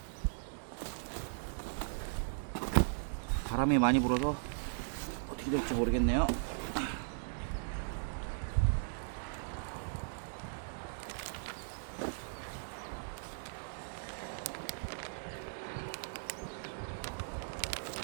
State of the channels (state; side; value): silent; left; digital silence